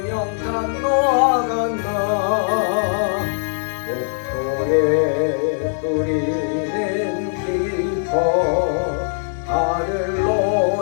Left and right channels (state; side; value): silent; right; digital silence